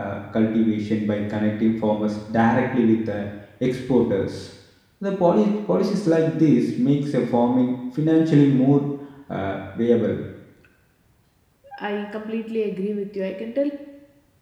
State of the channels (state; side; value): identical; both; correlation 1.00